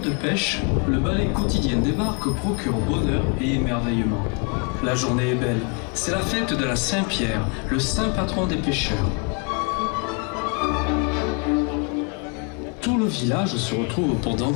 de pêche, le balai quotidien des barques procure bonheur et émerveillement. La journée est belle, c'est la fête de la Saint-Pierre, le saint patron des pêcheurs. Tout le village se retrouve pour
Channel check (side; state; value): right; quieter; 35.2 dB